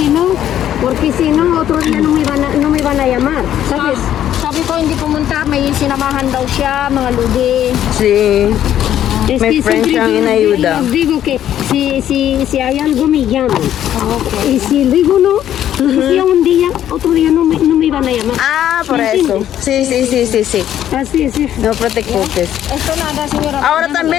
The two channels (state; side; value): quieter; right; 11.1 dB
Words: no, porque si no, otro día no me van a llamar, ¿sabes? Sabi ko hindi pumunta, may sinamahan daw siya, mga lugi. Sí. Es May que friend siempre siyang yo inayuda. les digo que si hay algo me llaman. Y si digo no, si un día, otro día no me van a llamar. Ah, por ¿Me eso. entiendes? Sí, sí, sí, sí, sí. Así es. No preocupes. Esto nada, señora. Ahora